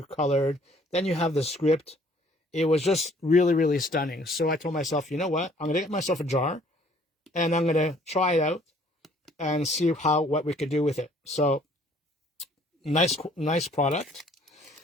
colored. Then you have the script. It was just really, really stunning. So I told myself, you know what? I'm gonna get myself a jar, and I'm gonna try it out and see what we could do with it. So nice product.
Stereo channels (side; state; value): both; normal; correlation 0.59